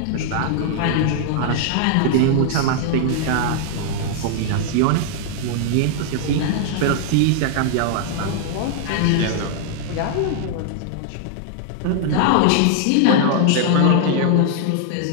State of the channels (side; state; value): both; different; correlation 0.00